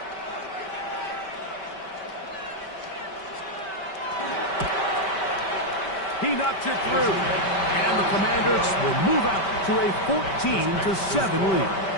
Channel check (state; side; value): late; right; 5.2 ms